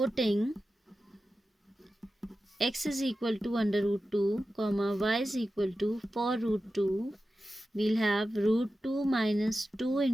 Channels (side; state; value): both; normal; correlation 0.93